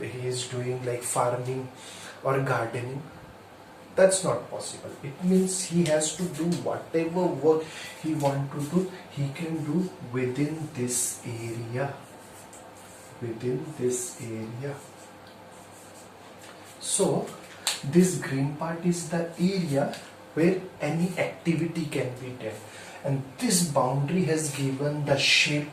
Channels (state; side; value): identical; both; correlation 1.00